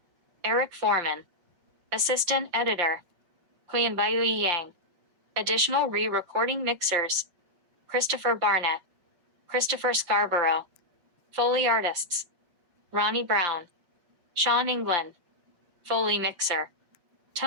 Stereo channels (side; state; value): left; late; 5.7 ms